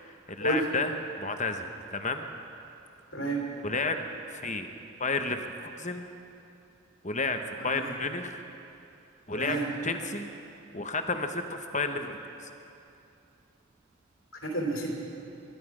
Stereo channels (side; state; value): both; normal; correlation 0.06